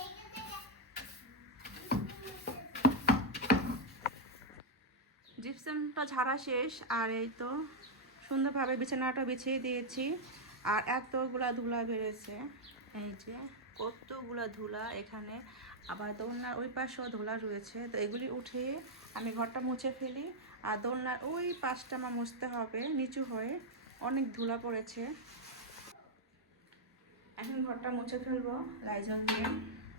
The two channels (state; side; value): normal; both; correlation -0.02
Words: জিপসামটা ঝাড়া শেষ, আর এই তো সুন্দরভাবে বিছানাটা বিছিয়ে দিয়েছি। আর এতগুলা ধুলা বেড়েছে, এই যে কতগুলা ধুলা এখানে। আবার দোলনার ওই পাশেও ধুলা রয়েছে, তো এগুলি উঠিয়ে আমি ঘরটা মুছে ফেলি। আর দোলনার ওই পাশটা আমার মুছতে হবে, নিচু হয়ে অনেক ধুলা পড়েছে। এখন ঘরটা মুছে ফেলবো লাইজল দিয়ে।